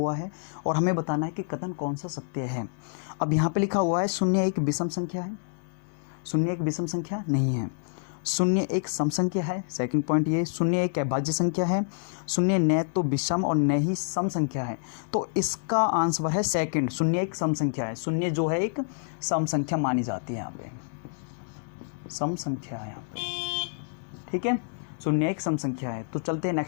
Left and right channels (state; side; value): silent; right; digital silence